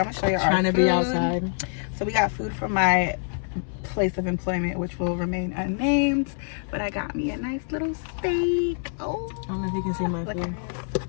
gonna show you our Trying to food. be outside. So we got food from my place of employment, which will remain unnamed. But I got me a nice little steak. Oh, I don't know if you can see my food.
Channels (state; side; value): silent; right; 61 dB below the other